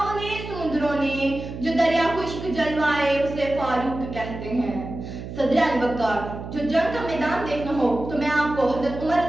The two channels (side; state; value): right; noise; hum, 10 dB below the sound